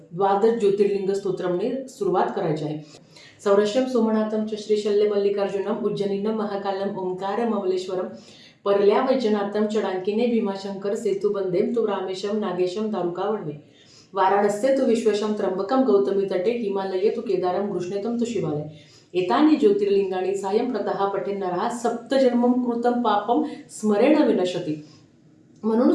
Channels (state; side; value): identical; both; correlation 1.00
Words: ज्योतिर्लिंग स्तोत्रमने सुरुवात करायची आहे. सौरश्यम सोमनाथम च श्रीशल्य मल्लिकार्जुनम उज्जनीनम महाकालम ओंकार ममलेश्वरम परल्या वैजनाथम चडांकिने भीमाशंकर सेतुबंदेम तु रामेशम नागेशम दारुका वणवे वाराणस्य तु विश्वेशम त्र्यंबकम गौतमी तटे हिमालये तु केदारम घृष्णेतम तु शिवालय एतानि ज्योतिर्लिंगाणी सायं प्रतः पठेन नरः सप्तजन्मम कृतं पापम स्मरेण विनशती. म्हणून